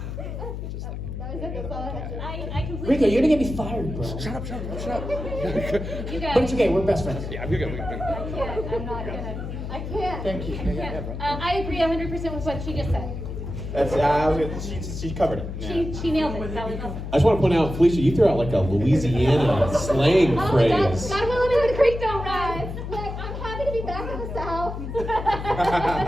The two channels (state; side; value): noise; left; hum, 7 dB below the sound